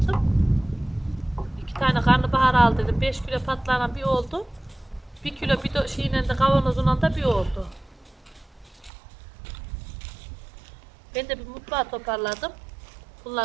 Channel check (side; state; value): left; drops out; at 8.9 s